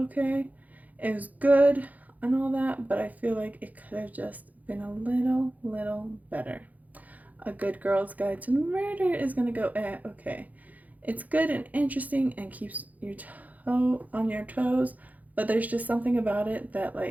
It was good and all that, but I feel like it could have just been a little better. A Good Girl's Guide to Murder is going to go okay. It's good and interesting and keeps your toe on your toes, but there's just something about it that,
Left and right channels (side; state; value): left; late; 0.078 ms